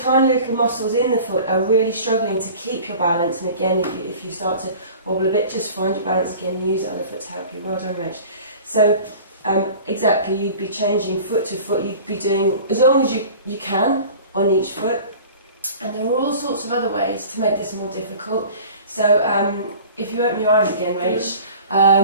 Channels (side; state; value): both; inverted; correlation -0.42